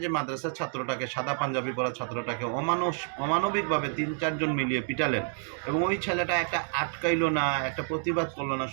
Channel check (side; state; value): left; silent; 59 dB below the other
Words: যে মাদ্রাসার ছাত্রটাকে, সাদা পাঞ্জাবি পরা ছাত্রটাকে অমানবিকভাবে 3-4 জন মিলিয়ে পিটালেন, এবং ওই ছেলেটা একটা আটকাইলো না, একটা প্রতিবাদ করলো না,